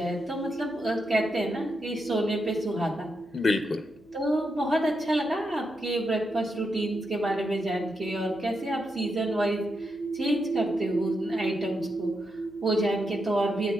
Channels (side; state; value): left; noise; hum, 28 dB below the sound